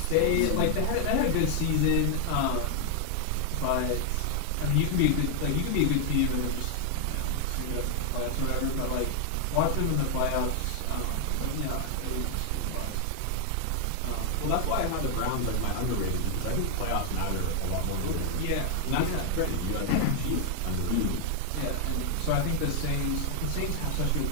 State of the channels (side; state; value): both; different; correlation 0.00